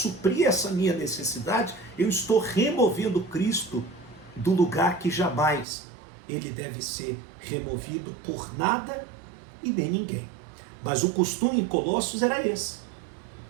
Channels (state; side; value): drops out; left; at 5.7 s